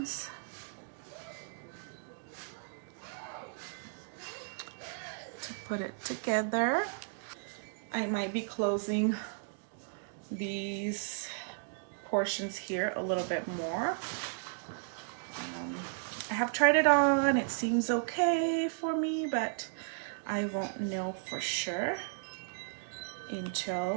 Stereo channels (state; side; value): silent; left; digital silence